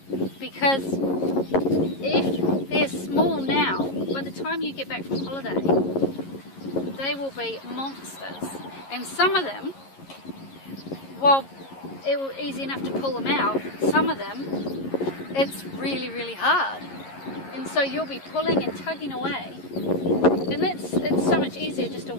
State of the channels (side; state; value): right; late; 11 ms